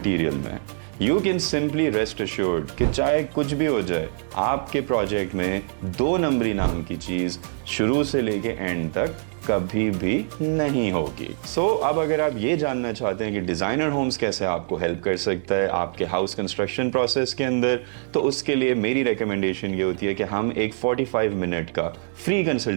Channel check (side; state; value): left; silent; digital silence